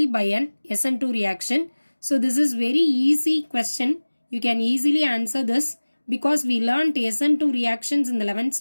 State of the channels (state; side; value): inverted; both; correlation -1.00